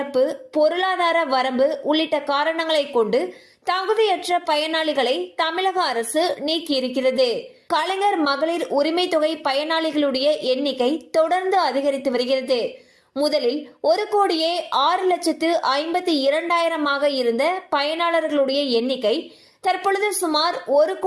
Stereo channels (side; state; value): both; identical; correlation 1.00